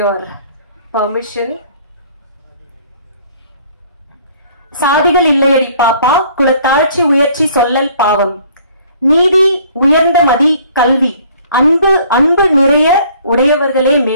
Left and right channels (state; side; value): inverted; both; correlation -0.57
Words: permission. சாதிகள் இல்லையடி பாப்பா, குலத்தாழ்ச்சி உயர்ச்சி சொல்லல் பாவம், நீதி உயர்ந்த மதி கல்வி, அன்பு அன்பு நிறைய உடையவர்களே